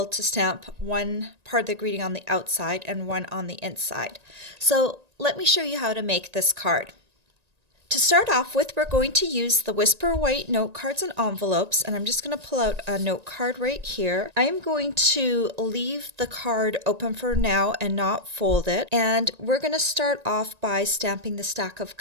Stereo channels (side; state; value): left; late; 1.9 ms